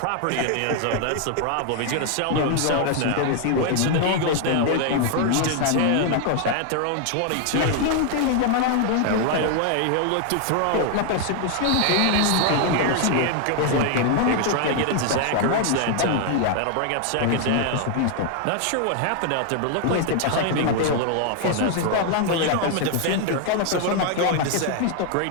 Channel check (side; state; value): both; different; correlation 0.00